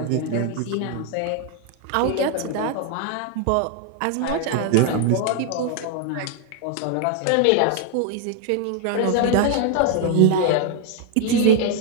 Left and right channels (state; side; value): different; both; correlation 0.00